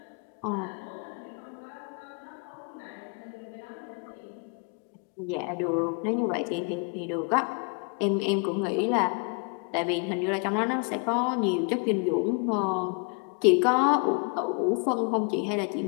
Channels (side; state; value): right; quieter; 36.7 dB